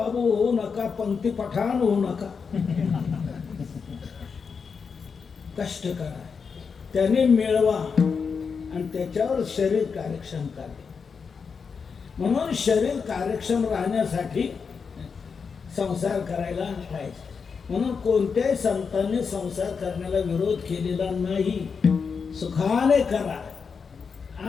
होऊ नका, पंक्ती पठाण होऊ नका. कष्ट करा, त्याने मिळवा आणि त्याच्यावर शरीर कार्यक्षम करा. म्हणून शरीर कार्यक्षम राहण्यासाठी संसार करायला पाहिजे. म्हणून कोणत्याही संतांनी संसार करण्याला विरोध केलेला नाही. सुखाने करा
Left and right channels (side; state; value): right; quieter; 5.7 dB